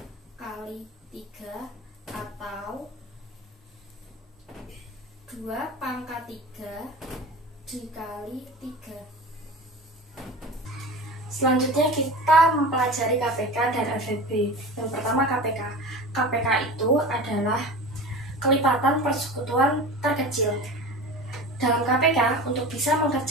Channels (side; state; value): both; normal; correlation 0.33